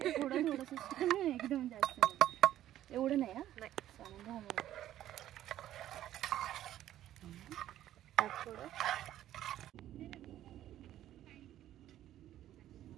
थोडं थोडंसं, एकदम जास्त एवढं नाही. नाही थोडं.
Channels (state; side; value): quieter; left; 12.6 dB